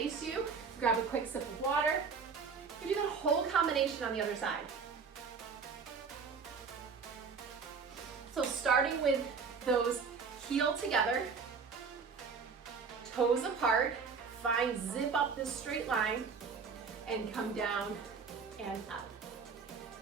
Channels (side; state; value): left; quieter; 5.4 dB